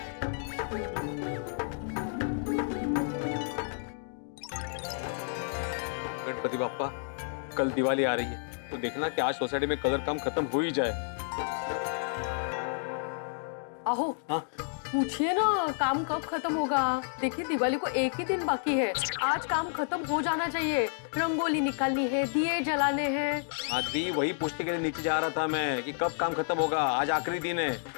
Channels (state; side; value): silent; right; digital silence